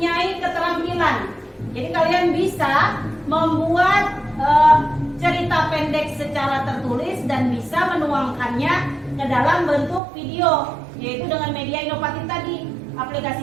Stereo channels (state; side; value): drops out; left; at 10.0 s